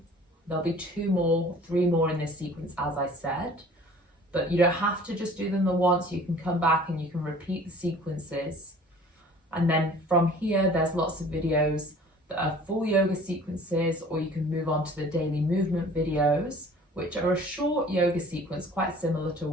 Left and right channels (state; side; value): normal; both; correlation 0.49